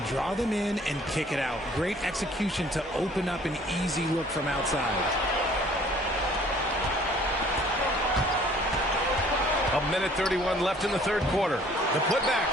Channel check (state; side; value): normal; both; correlation 0.55